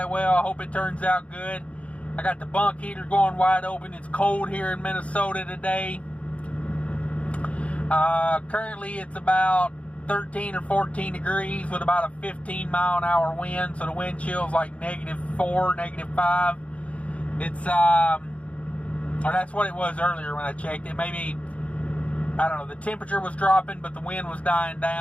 well. I hope it turns out good. I got the bunk heater going wide open. It's cold here in Minnesota today. Currently it's about 13 or 14 degrees with about a 15 mile an hour wind. So the wind chill is like -4, -5. It's or that's what it was earlier when I checked it. Maybe, I don't know, the temperature was dropping, but the wind was dying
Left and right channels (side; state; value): right; late; 0.064 ms